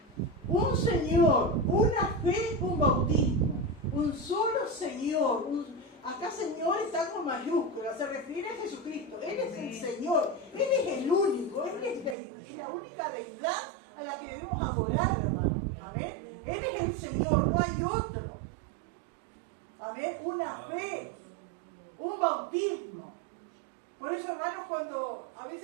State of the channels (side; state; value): left; drops out; at 12.2 s